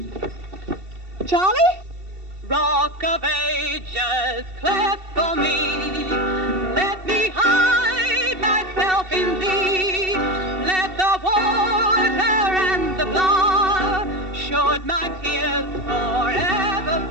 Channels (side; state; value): left; late; 2.7 ms